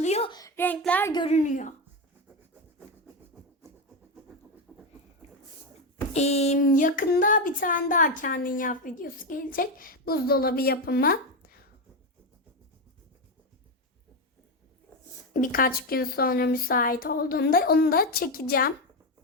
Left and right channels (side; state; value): both; normal; correlation 0.11